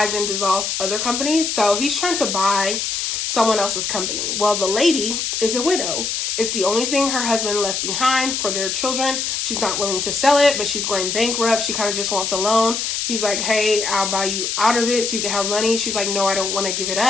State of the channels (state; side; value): noise; left; hiss, 1 dB below the sound